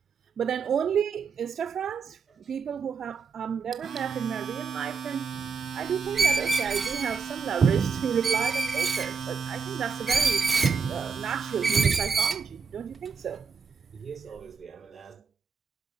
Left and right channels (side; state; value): left; quieter; 5.6 dB